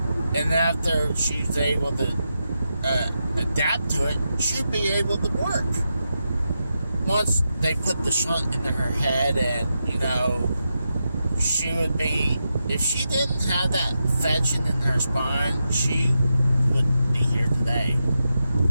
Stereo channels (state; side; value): inverted; both; correlation -0.87